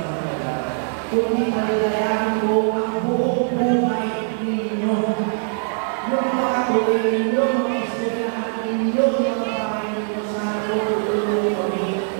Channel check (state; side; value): silent; left; digital silence